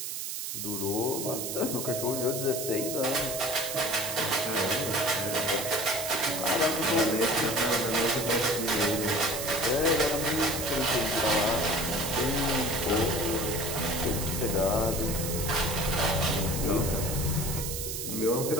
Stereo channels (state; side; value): noise; right; hiss, 4 dB below the sound